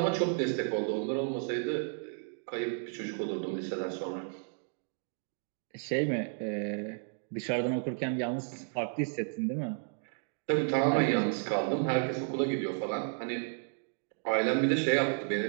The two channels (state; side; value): silent; left; 56 dB below the other